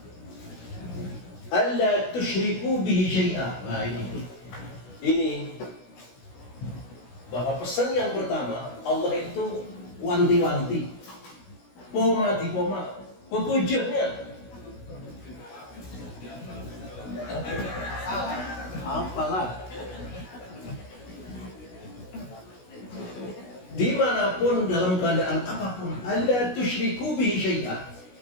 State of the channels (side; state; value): right; late; 16 ms